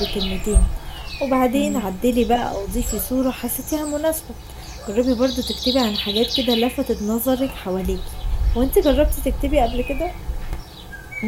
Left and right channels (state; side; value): identical; both; correlation 1.00